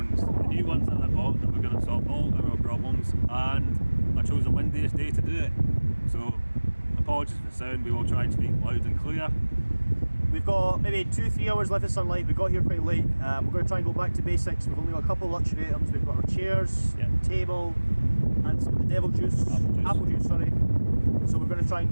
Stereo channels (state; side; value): inverted; both; correlation -1.00